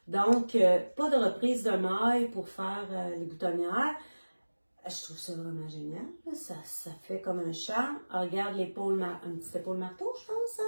Donc, pas de reprise de maille pour faire les boutonnières. Je trouve ça vraiment génial. Ça fait comme un charme. Regarde l'épaule, un petit épaule marteau, je pense.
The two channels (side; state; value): both; inverted; correlation -1.00